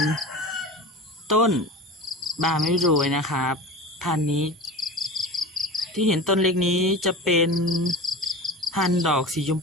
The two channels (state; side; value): normal; both; correlation 0.31